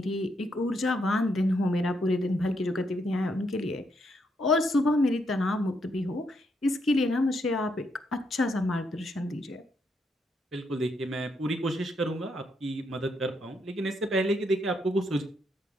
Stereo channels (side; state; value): both; normal; correlation 0.77